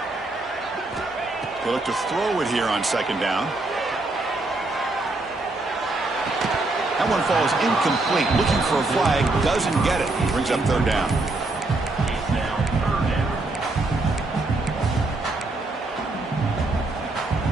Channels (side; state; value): left; quieter; 3.1 dB